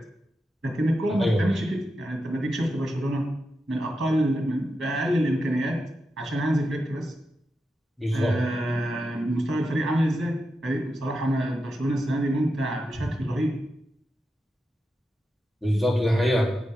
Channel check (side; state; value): both; normal; correlation 0.88